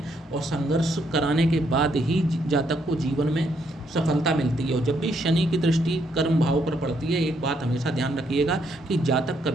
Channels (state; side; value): normal; both; correlation 0.74